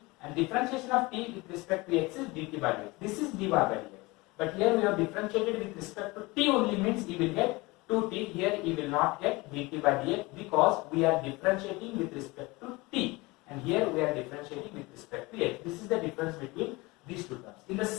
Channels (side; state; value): right; quieter; 23.4 dB